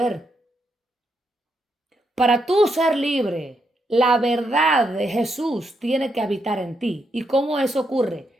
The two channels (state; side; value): normal; both; correlation 0.80